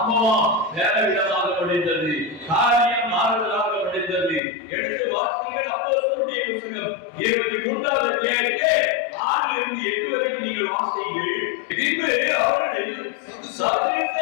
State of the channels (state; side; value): drops out; right; at 4.4 s